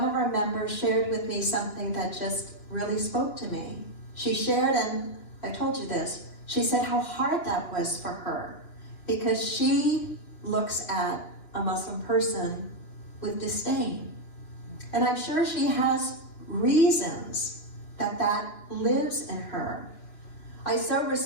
of our members shared with me something that just really spoke to me. She shared, and I told you this, she said how hard that was for her, because she looks at a Muslim person with disdain. And I'm sure she has reasons that lives in her. I so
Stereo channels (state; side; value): late; right; 2.9 ms